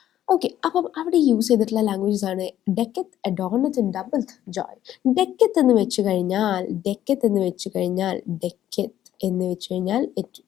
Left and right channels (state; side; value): quieter; right; 11.9 dB